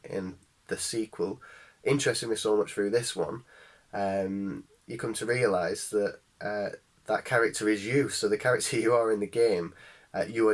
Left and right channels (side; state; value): both; identical; correlation 1.00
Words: the sequel, interested me so much through this one, you come to realise that that character is you. So the character you are in the game, you